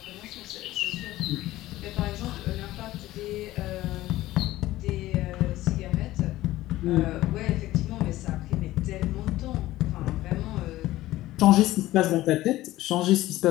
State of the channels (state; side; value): quieter; right; 16.2 dB